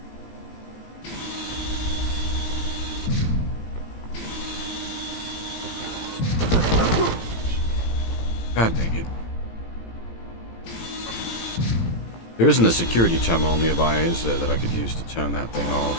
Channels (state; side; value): late; right; 18 ms